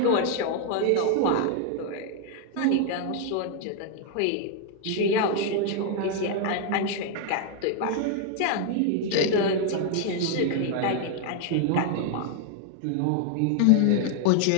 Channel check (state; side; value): different; both; correlation 0.00